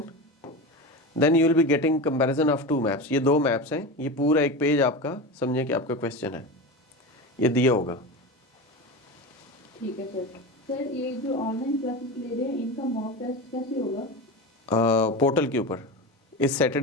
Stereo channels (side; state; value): both; normal; correlation 0.25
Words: then you will be getting comparison of 2 maps. ये 2 मैप्स हैं, ये पूरा एक पेज आपका, समझे कि आपका क्वेश्चन है, ये दिया होगा। ठीक है सर। सर ये जो ऑनलाइन क्लासेस ले रहे हैं, इनका मॉक टेस्ट कैसे होगा? पोर्टल के ऊपर इस